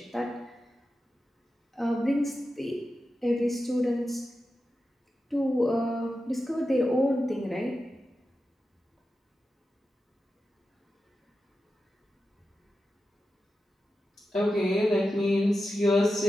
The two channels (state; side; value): normal; both; correlation 0.91